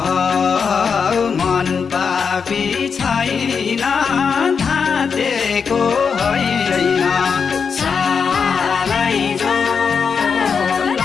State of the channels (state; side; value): quieter; right; 6.0 dB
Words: मन पापी छैन धातेको होइन सालैजो